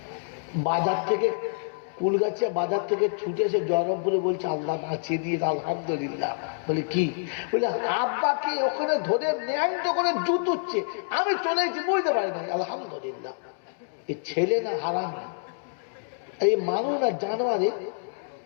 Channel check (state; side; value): silent; right; digital silence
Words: বাজার থেকে কুলগাছিয়া বাজার থেকে ছুটে এসে জয়রামপুরে বলছে, আল্লাহ বাঁচিয়ে দিয়ে, আলহামদুলিল্লাহ। বলে কি? বলে আব্বাকে ওখানে ধরে ন্যাংট করে জুতুচ্ছে, আমি চলে এসেছি, বুঝতে পারি না, আলহামদুলিল্লাহ। এ ছেলে না হারামি, এই মানুষ না জানোয়ারে